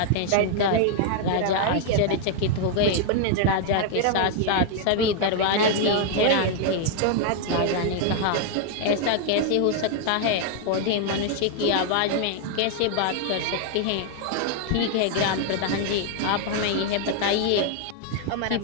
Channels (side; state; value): both; different; correlation 0.00